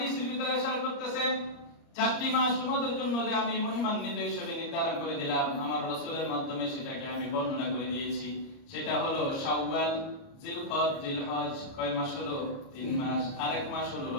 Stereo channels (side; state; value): right; late; 30 ms